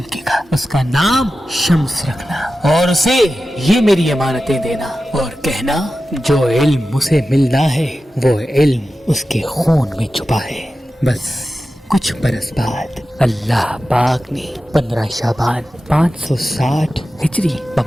گا، اس کا نام شمس رکھنا، اور اسے یہ میری امانتیں دینا اور کہنا جو علم اسے ملنا ہے وہ علم اس کے خون میں چھپا ہے۔ بس کچھ برس بعد اللہ پاک نے 15 شعبان 560 ہجری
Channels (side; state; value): both; normal; correlation 0.93